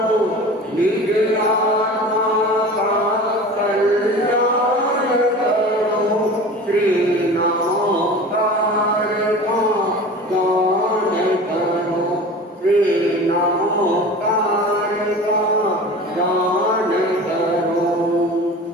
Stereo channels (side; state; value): both; normal; correlation 0.37